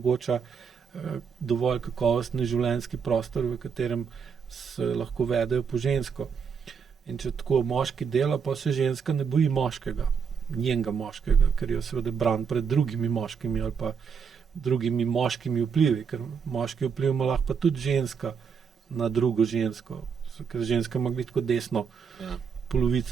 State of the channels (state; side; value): quieter; left; 6.4 dB